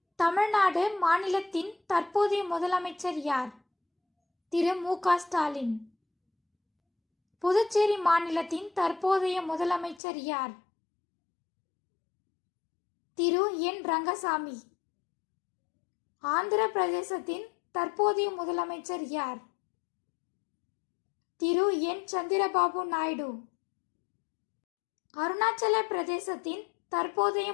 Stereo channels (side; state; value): right; drops out; at 10.0 s